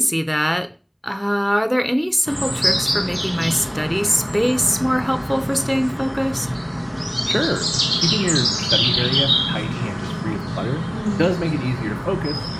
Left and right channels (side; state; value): both; identical; correlation 1.00